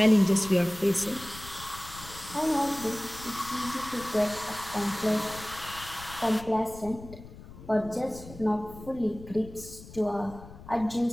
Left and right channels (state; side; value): noise; left; rumble, 16 dB below the sound